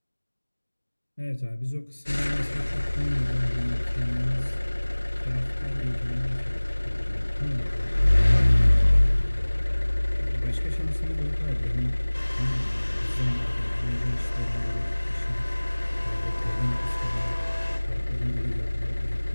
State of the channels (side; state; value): both; inverted; correlation -1.00